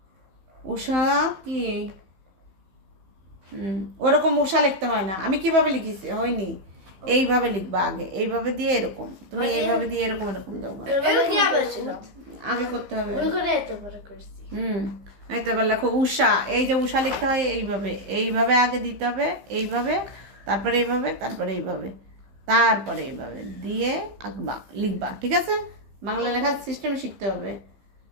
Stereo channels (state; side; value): late; left; 15 ms